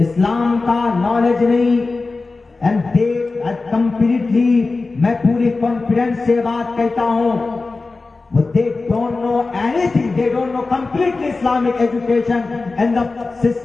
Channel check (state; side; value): quieter; right; 3.7 dB